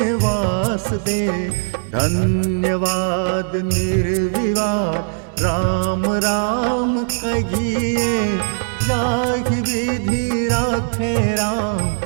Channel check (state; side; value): silent; left; digital silence